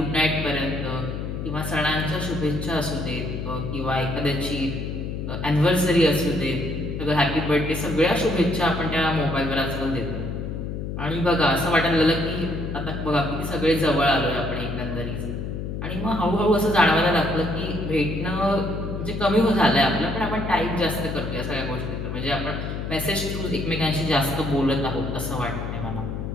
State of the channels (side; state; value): left; noise; hum, 5 dB below the sound